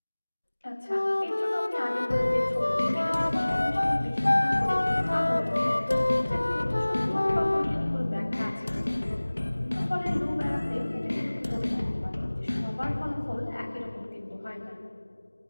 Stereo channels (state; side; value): inverted; both; correlation -1.00